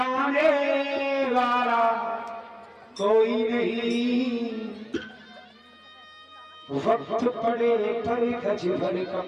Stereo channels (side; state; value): both; identical; correlation 1.00